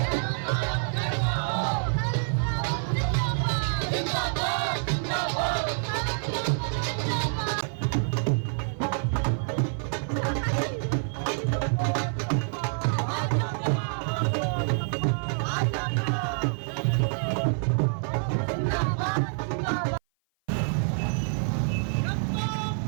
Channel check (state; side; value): silent; left; 55 dB below the other